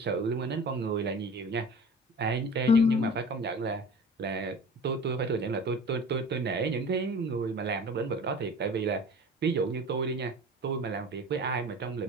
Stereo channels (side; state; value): both; normal; correlation 0.39